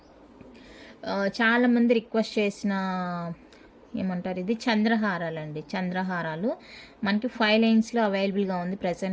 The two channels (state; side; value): identical; both; correlation 1.00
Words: చాలామంది రిక్వెస్ట్ చేసిన ఏమంటారు, ఇది చంద్రహారాలు అండి. చంద్రహారాలు మనకి 5 లైన్స్లో అవైలబుల్గా ఉంది